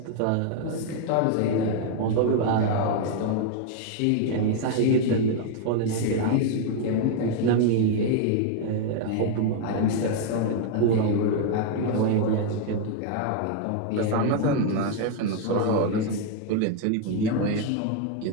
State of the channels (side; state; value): both; different; correlation 0.00